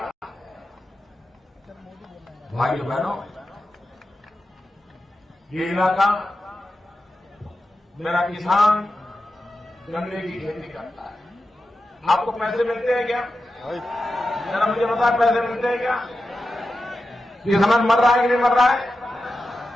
भाइयों बहनों, ये इलाका मेरा किसान गन्ने की खेती करता है। आपको पैसे मिलते हैं क्या? जरा मुझे बता, पैसे मिलते हैं क्या? किसान मर रहा है कि नहीं मर रहा है?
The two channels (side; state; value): both; normal; correlation 0.91